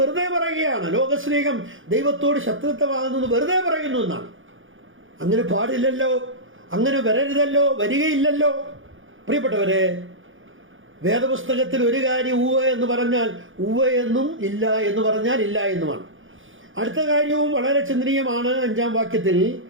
പറയുകയാണ്. ലോകസ്നേഹം ദൈവത്തോട് ശത്രുത്വമാകുന്നത് വെറുതെ പറയുന്നു എന്നാണ്. അങ്ങനെ പാടില്ലല്ലോ, അങ്ങനെ വരരുതല്ലോ, വരികയില്ലല്ലോ. പ്രിയപ്പെട്ടവരെ, വേദപുസ്തകത്തിൽ ഒരു കാര്യം ഉവ്വ എന്ന് പറഞ്ഞാൽ ഉവ്വ എന്നും, ഇല്ല എന്ന് പറഞ്ഞാൽ ഇല്ല എന്നുമാണ്. അടുത്ത കാര്യവും വളരെ ചിന്തനീയമാണ്. 5-ാം വാക്യത്തിൽ,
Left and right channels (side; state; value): left; late; 0.58 ms